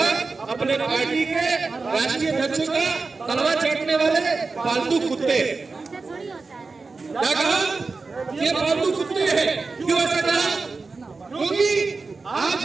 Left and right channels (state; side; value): quieter; left; 4.1 dB